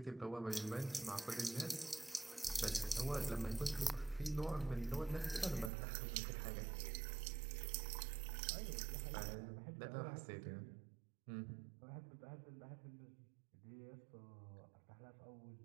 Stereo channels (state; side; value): drops out; left; at 5.7 s